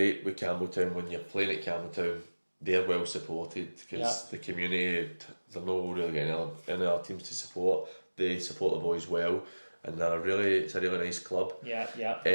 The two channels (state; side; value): inverted; both; correlation -1.00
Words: with Campbelltown when you're playing at Campbelltown. They're well supported because the community, they're not really getting any other teams to support. They support the boys well, and it's a really nice club. Yeah.